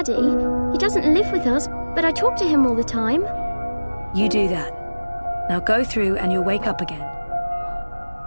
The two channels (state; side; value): inverted; both; correlation -1.00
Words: He doesn't live with us, but I talk to him all the time. You do that. Now go through and you'll wake up again.